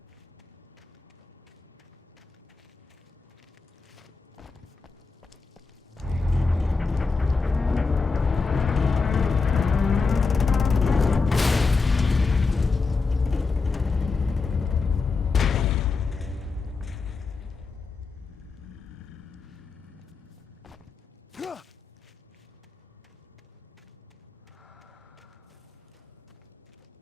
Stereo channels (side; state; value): right; quieter; 4.4 dB